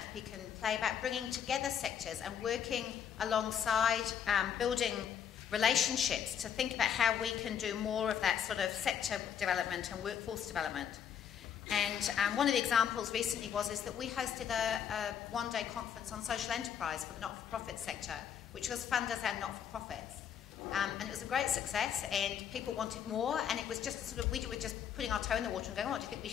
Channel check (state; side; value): quieter; right; 8.5 dB